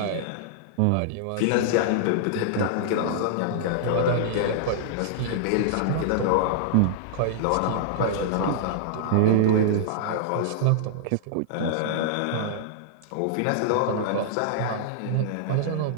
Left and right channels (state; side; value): different; both; correlation -0.01